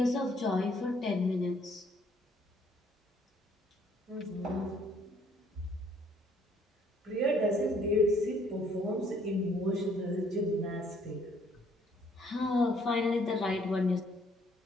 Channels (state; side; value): normal; both; correlation 0.64